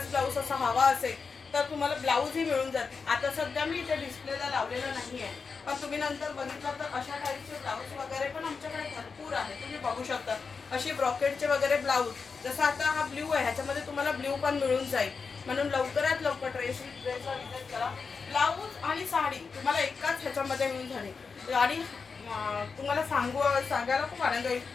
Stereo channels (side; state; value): right; quieter; 5.1 dB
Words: ब्लाऊज असा हवा असेल तर तुम्हाला ब्लाऊजही मिळून जाते। आता सध्या मी इथे डिस्प्लेला लावलेलं नाही आहे, पण तुम्ही नंतर बघितलं तर अशा टाईपचे ब्लाऊज वगैरे पण आमच्याकडे भरपूर आहे। तुम्ही बघू शकता अशी ब्रॉकेटचे वगैरे ब्लाऊज, जसं आता हा ब्ल्यू आहे ह्याच्यामध्ये तुम्हाला ब्ल्यू पण मिळून जाईल। म्हणून लवकरात लवकर ड्रेसला विजिट करा। ब्लाऊज आणि साडी तुम्हाला एकाच ह्याच्यामध्ये मिळून झाली। आणि तुम्हाला सांगायला खूप आनंद होईल